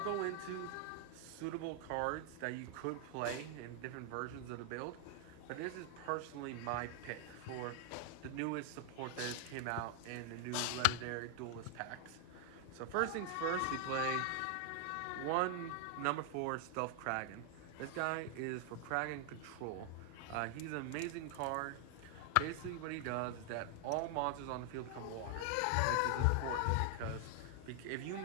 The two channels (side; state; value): both; different; correlation 0.00